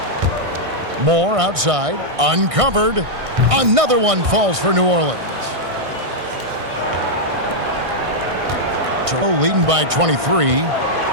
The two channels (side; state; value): left; late; 1.6 ms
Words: Moore outside, uncovered. Another one falls for New Orleans. Toronto leading by 23.